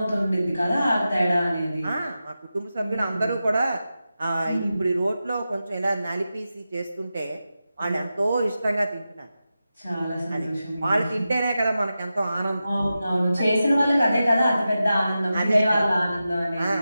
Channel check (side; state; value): both; inverted; correlation -0.92